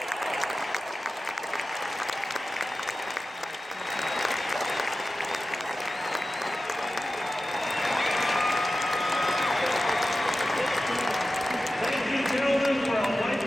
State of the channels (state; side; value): normal; both; correlation 0.94